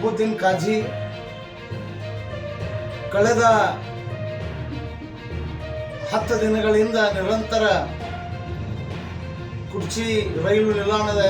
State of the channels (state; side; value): identical; both; correlation 1.00